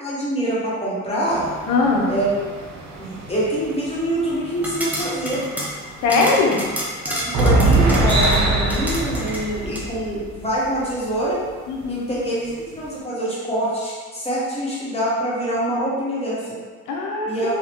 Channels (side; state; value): both; normal; correlation 0.28